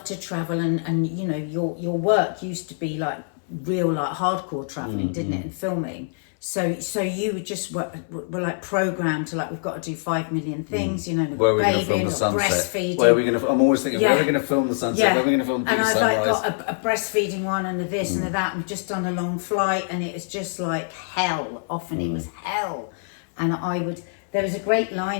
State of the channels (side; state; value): right; silent; 62 dB below the other